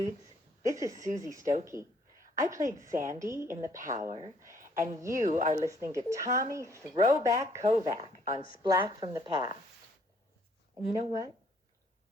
this is Susie Stokey. I played Sandy in The Power, and you are listening to Tommy Throwback Kovac on Splat from the Past. And you know what?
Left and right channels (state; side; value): normal; both; correlation 0.65